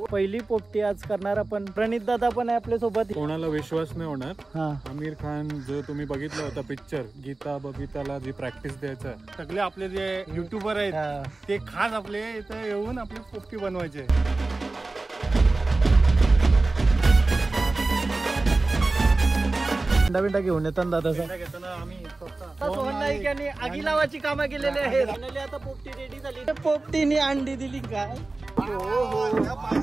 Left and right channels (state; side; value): quieter; left; 3.3 dB